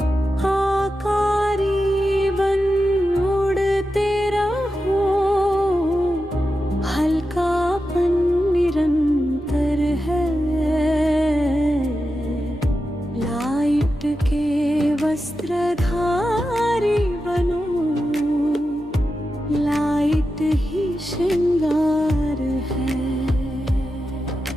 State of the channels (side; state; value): both; normal; correlation 0.90